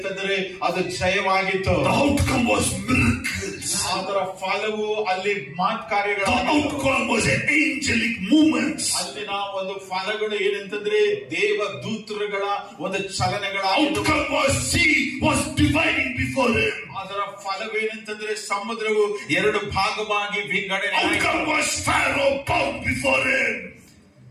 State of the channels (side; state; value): both; identical; correlation 1.00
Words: ಅದು ಜಯವಾಗಿತ್ತು. The outcome was miracles. ಅದರ ಫಲವು ಅಲ್ಲಿ ಕಾರ್ಯಗಳು. The outcome was angelic movements. ಅಲ್ಲಿನ ಒಂದು ಫಲಗಳು ಏನಂತಂದ್ರೆ ದೇವದೂತರುಗಳ ಒಂದು ಚಲನೆಗಳ. Outcome was sea was dividing before him. ಅದರ ಫಲವೇನಂತಂದ್ರೆ ಸಮುದ್ರವು ಎರಡು ಭಾಗವಾಗಿ ವಿಂಗಡಣೆ. Outcome was Pharaoh bowed before him.